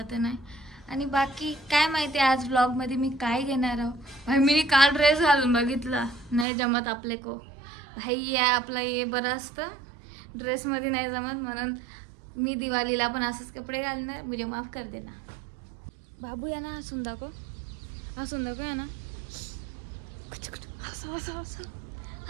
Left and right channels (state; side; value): drops out; left; at 6.5 s